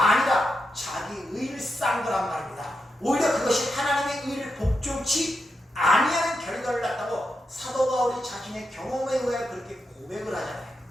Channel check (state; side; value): normal; both; correlation 0.86